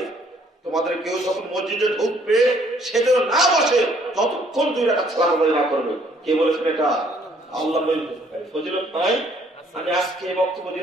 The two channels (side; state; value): both; normal; correlation 0.63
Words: তোমাদের কেউ যখন মসজিদে ঢুকবে সে যেন না বসে যতক্ষণ 2 রাকাত সালাত আদায় না করবে। কে বলেছেন এটা? আল্লাহ বলেছেন। ফজিলত নাই? আমি আজকে বক্তব্য